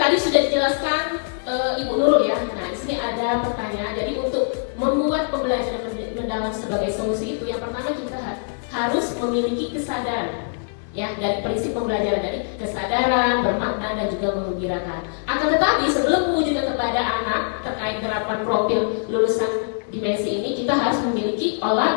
sudah dijelaskan Ibu Nurul ya. Nah, di sini ada pertanyaan. Jadi untuk membuat pembelajaran mendalam sebagai solusi itu, yang pertama kita harus memiliki kesadaran. Ya, dari prinsip pembelajaran dari kesadaran, bermakna dan juga menggembirakan. Akan tetapi sebelum mewujudkan kepada anak terkait gerakan profil lulusan dimensi ini, kita harus memiliki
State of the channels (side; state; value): right; silent; digital silence